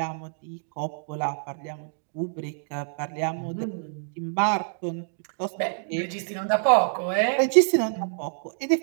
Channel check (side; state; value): left; silent; digital silence